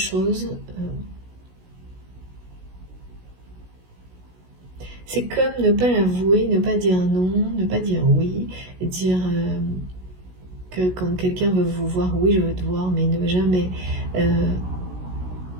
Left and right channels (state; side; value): late; left; 16 ms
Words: c'est comme ne pas l'avouer, ne pas dire non, ne pas dire oui, dire que quand quelqu'un veut vous voir, oui je veux te voir, mais ne jamais